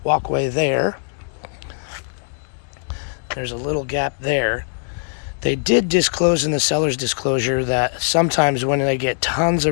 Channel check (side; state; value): right; silent; 58 dB below the other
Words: walkway there. There's a little gap there. They did disclose in the seller's disclosure that sometimes when they get tons